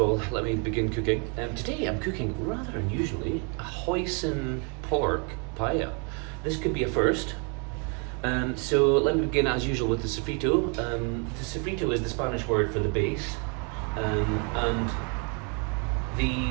let me begin cooking. Today I'm cooking, rather unusually, a hoisin pork paella. This could be a first. So let me begin as usual with the sofrito. The sofrito is the Spanish word for the base, and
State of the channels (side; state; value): left; quieter; 36.4 dB